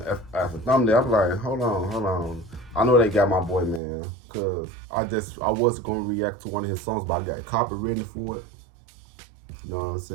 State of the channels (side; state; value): left; drops out; at 3.8 s